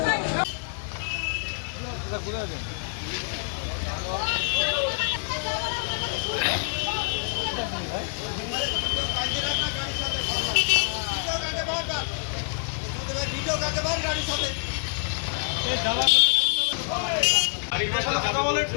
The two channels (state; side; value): silent; right; digital silence